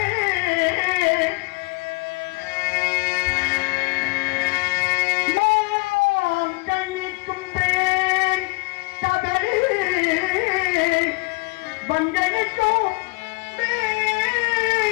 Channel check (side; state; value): right; quieter; 27.3 dB